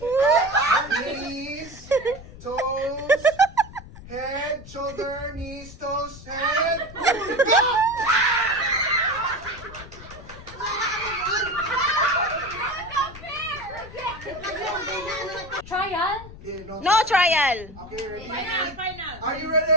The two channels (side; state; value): left; noise; rumble, 16 dB below the sound